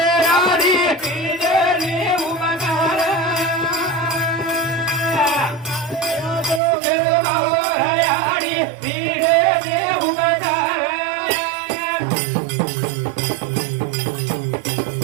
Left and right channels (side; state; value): left; drops out; at 6.6 s